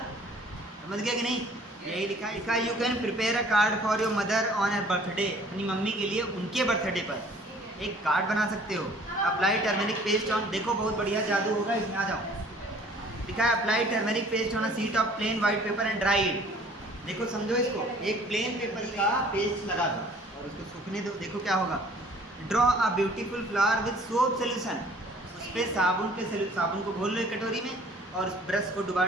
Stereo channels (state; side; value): normal; both; correlation 0.53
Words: समझ गया कि नहीं? यही लिखा है। लिखा you can prepare a card for your mother on a birthday, अपनी मम्मी के लिए उनके बर्थडे पर एक कार्ड बना सकते हो। अप्लाई टर्मेरिक पेस्ट ऑन, देखो बहुत बढ़िया जादू होगा इसमें, आ जाओ। लिखा है apply turmeric paste on a sheet of plain white paper and dry it. देखो समझो इसको, एक प्लेन पेपर का पेस्ट लगा दो और उसको सूखने दो, देखो क्या होगा। Draw a beautiful flower with soap solution, उस पर साबुन को घोल लो एक कटोरी में और उस ब्रश को डुबा